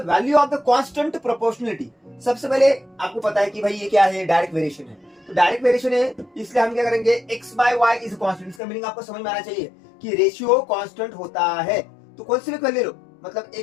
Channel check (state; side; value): drops out; right; at 8.6 s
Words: value of the constant proportionality. सबसे पहले आपको पता है कि भाई ये क्या है, डायरेक्ट वेरिएशन है, तो डायरेक्ट वेरिएशन है, इसलिए हम क्या करेंगे, x/y इज कांस्टेंट। इसका मीनिंग आपको समझ में आना चाहिए कि रेशियो कांस्टेंट होता है। तो कौन सी भी ले लो, मतलब